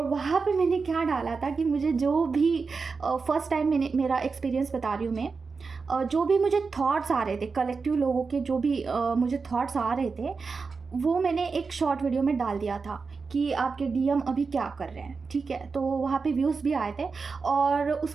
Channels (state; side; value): quieter; left; 4.7 dB